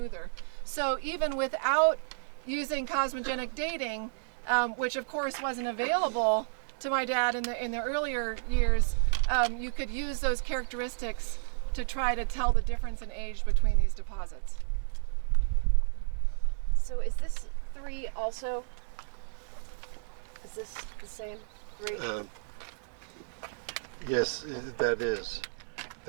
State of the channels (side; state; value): left; silent; digital silence